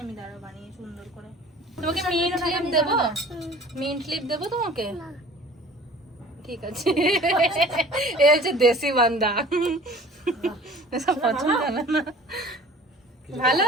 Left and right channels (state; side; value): normal; both; correlation 0.46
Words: আমি, দাঁড়া বানিয়ে সুন্দর করে। তোমাকে মিন্ট ক্লিপ দেবো? মিন্ট ক্লিপ দেবো তোমাকে? ঠিক আছে। এ হচ্ছে দেশি বান্দা, এসব পছন্দ না। ভালো